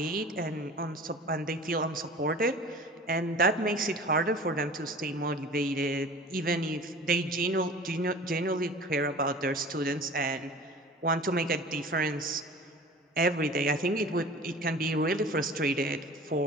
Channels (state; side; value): normal; both; correlation 0.41